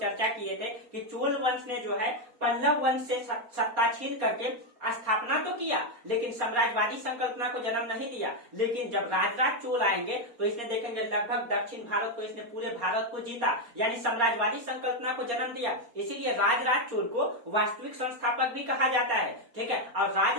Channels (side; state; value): left; late; 4.2 ms